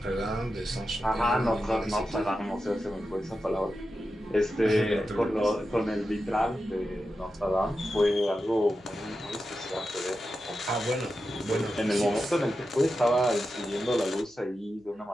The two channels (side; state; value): right; noise; hum, 30 dB below the sound